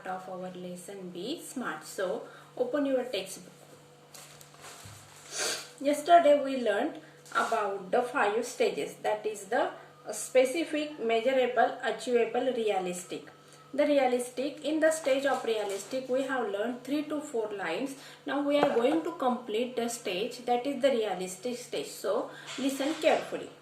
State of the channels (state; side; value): identical; both; correlation 1.00